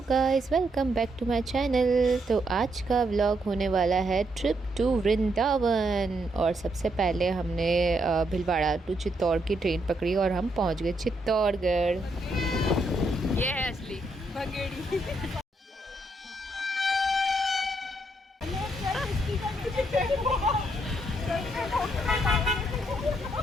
guys, welcome back to my channel. तो आज का व्लॉग होने वाला है ट्रिप टू वृंदावन। और सबसे पहले हमने भीलवाड़ा टू चित्तौड़ की ट्रेन पकड़ी और हम पहुंच गए चित्तौड़गढ़। ये है असली भंगेड़ी।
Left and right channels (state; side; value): normal; both; correlation 0.77